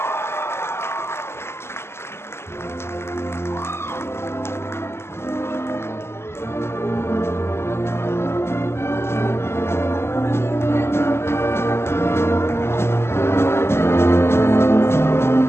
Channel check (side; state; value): right; late; 0.12 ms